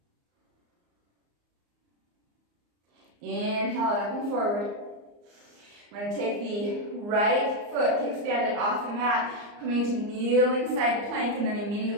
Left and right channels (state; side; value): late; left; 34 ms